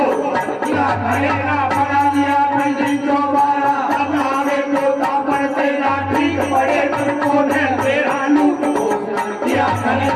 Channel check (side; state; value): both; identical; correlation 1.00